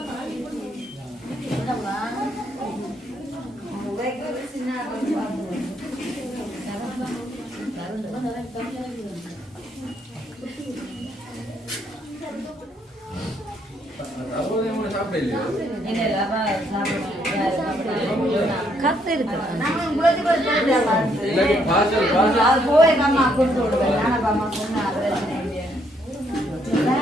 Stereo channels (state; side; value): normal; both; correlation 0.71